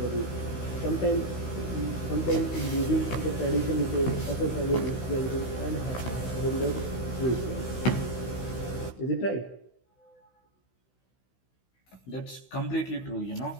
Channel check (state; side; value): late; right; 16 ms